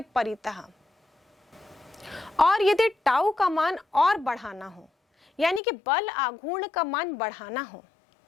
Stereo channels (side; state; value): right; drops out; at 5.6 s